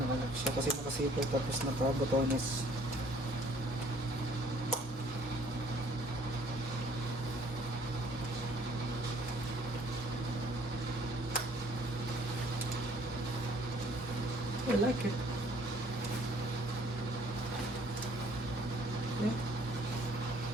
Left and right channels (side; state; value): both; normal; correlation 0.59